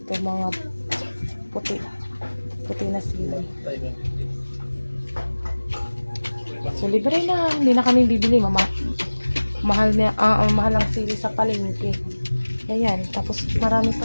mga puti na sili. So libre na, hindi na kami bibili, mahal ang sili sa palengke. Ayan, tapos marami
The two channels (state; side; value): inverted; both; correlation -1.00